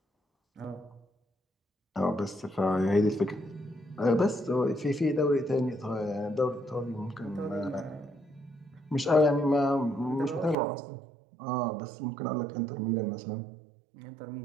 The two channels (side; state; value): left; drops out; at 10.6 s